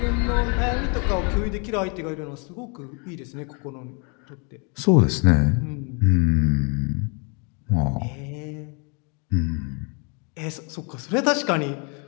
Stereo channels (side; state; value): right; quieter; 35.1 dB